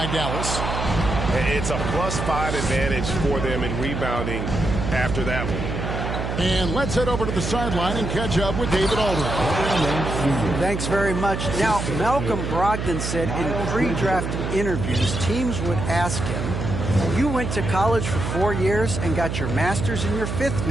Dallas. It's a +5 advantage for them in rebounding after that one. And let's head over to the sideline and catch up with David Aldridge. Thanks very much. Now, Malcolm Brogdon said in pre-draft interviews, teams would ask him, you went to college for 4 years and got your master's in your 5th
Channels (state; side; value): noise; right; hum, 3 dB below the sound